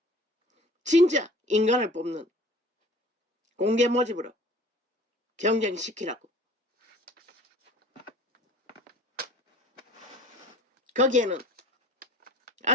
진짜 인간을 뽑는 공개 모집으로 경쟁시키라고. 거기에는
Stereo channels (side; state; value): both; normal; correlation 0.47